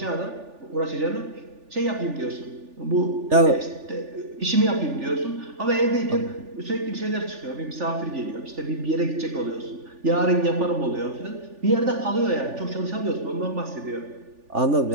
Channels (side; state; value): left; late; 3.4 ms